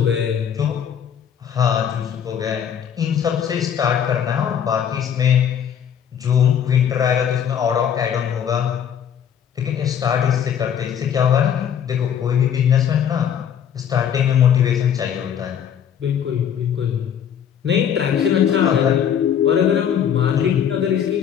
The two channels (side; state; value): right; quieter; 8.7 dB